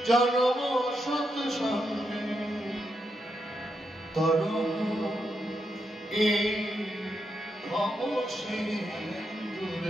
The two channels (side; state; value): both; normal; correlation 0.83